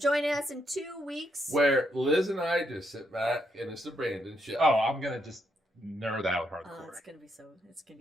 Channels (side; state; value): both; normal; correlation 0.77